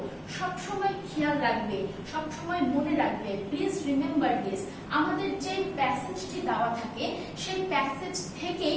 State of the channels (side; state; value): both; identical; correlation 1.00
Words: সব সময় খেয়াল রাখবে, সব সময় মনে রাখবে, প্লিজ রিমেম্বার দিস, আমাদের যে প্যাসেজটি দেওয়া থাকে সেই প্যাসেজ থেকেই